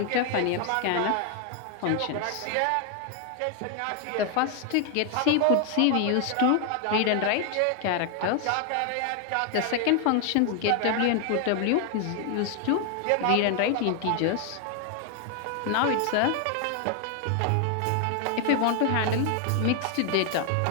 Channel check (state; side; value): different; both; correlation 0.01